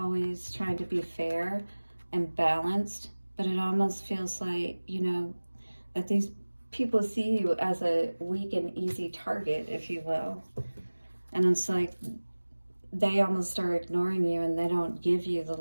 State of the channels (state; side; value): inverted; both; correlation -1.00